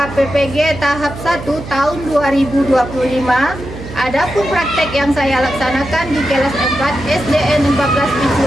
PPG tahap 1 tahun 2025. Adapun praktek yang saya laksanakan di kelas 4 SDN 14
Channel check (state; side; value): noise; right; hum, 12 dB below the sound